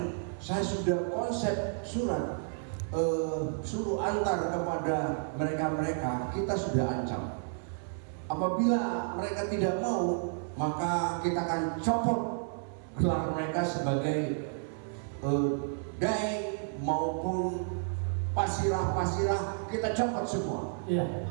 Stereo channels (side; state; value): left; silent; digital silence